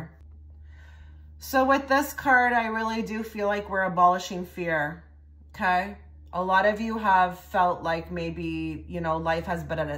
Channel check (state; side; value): identical; both; correlation 1.00